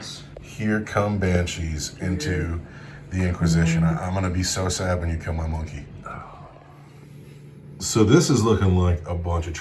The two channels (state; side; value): identical; both; correlation 1.00